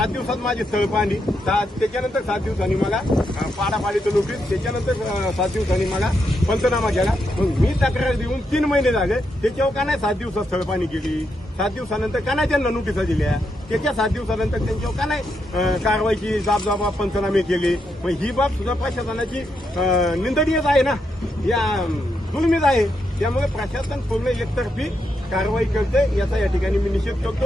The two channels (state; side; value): normal; both; correlation 0.82